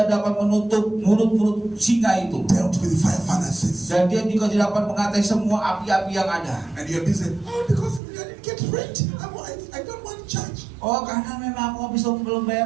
dapat menutup mulut-mulut singa itu. dealt with fire furnaces. Dan dia juga dapat mengatai semua api-api yang ada. And you're busy, because I didn't get rent. I don't want church. Oh, karena memang aku belum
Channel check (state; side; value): drops out; left; at 8.0 s